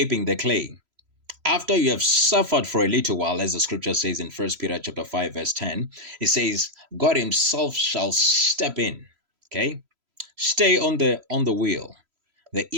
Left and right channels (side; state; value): left; late; 3.0 ms